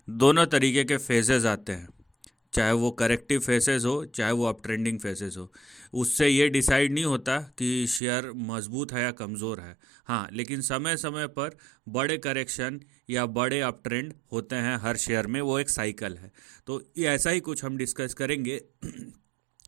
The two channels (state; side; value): drops out; left; at 8.0 s